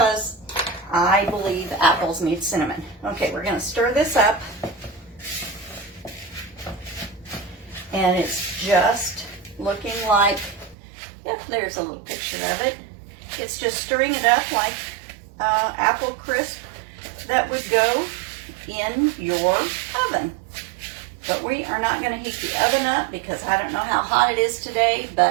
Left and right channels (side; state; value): left; drops out; at 10.8 s